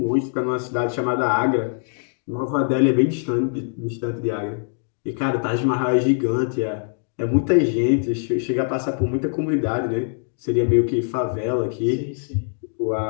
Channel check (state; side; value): silent; right; digital silence